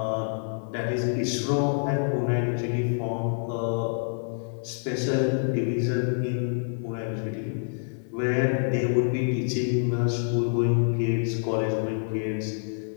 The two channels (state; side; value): silent; right; 60 dB below the other